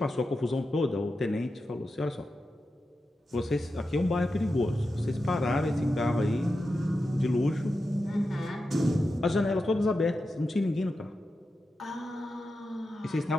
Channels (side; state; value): both; normal; correlation 0.90